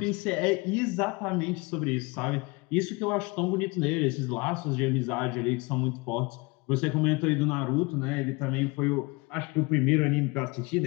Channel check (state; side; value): quieter; right; 26.2 dB